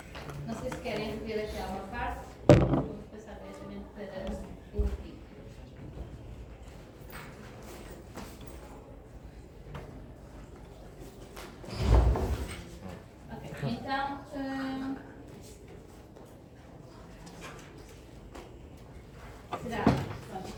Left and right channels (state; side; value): identical; both; correlation 1.00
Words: Não sei se querem rever aqui alguma parte. Vou passar diretamente para o vídeo. Ok, então. Será? Pronto,